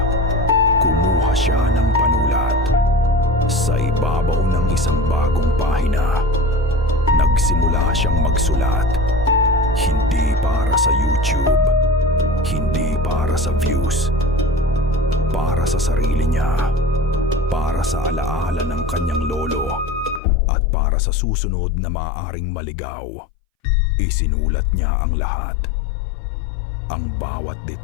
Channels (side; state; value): right; drops out; at 20.2 s